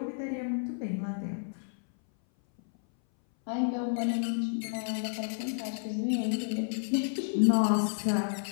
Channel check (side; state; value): right; silent; 57 dB below the other